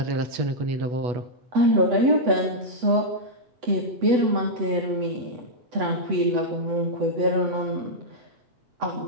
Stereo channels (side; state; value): left; late; 8.0 ms